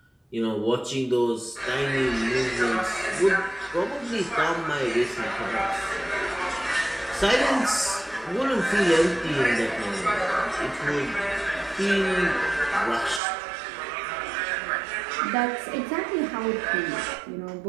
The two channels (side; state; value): left; drops out; at 13.2 s